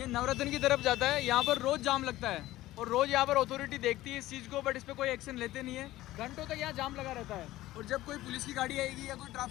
नवरत्न की तरफ जाता है। यहाँ पर रोज जाम लगता है और रोज यहाँ पर अथॉरिटी देखती है इस चीज को, बट इस पर कोई एक्शन लेते नहीं है। घंटों तक यहाँ जाम लगा रहता है और जब कोई पुलिस की गाड़ी आएगी या कोई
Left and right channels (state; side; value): quieter; right; 16.2 dB